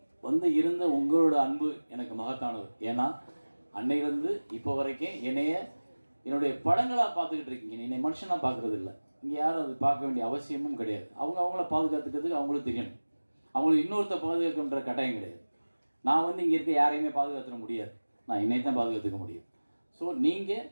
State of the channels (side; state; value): both; inverted; correlation -1.00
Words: வந்து இருந்த உங்களோட அன்பு எனக்கு மகத்தானது. ஏன்னா அன்னையிலேருந்து இப்போ வரைக்கும் என்னுடைய படங்களாக பார்த்துக்கிட்டு இருக்கீங்க, என்னை மனுஷனாக பார்க்குறது இல்லை. இங்கே யாரும் அது பார்க்க வேண்டிய அவசியமும் கிடையாது. அவங்கள பாதுகாத்துக்கிறதுக்கு அவங்களுக்கு தெரியணும். அவங்களுக்கு இன்னொருத்த பாதுகாக்கின்ற கட்டாயம் கிடையாது. நான் வந்து இங்கே இருக்க யாரையுமே பாதுகாத்துட முடியாது, நான் என்னை தான் பாதுகாத்துக்க முடியும். ஸோ நீங்கள்